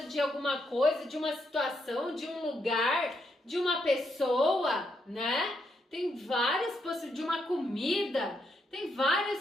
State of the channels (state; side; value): normal; both; correlation 0.79